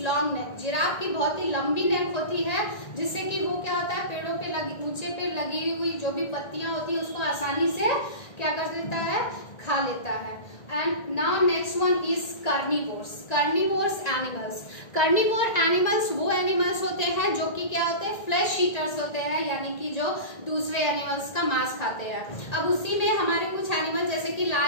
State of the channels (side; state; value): right; late; 1.9 ms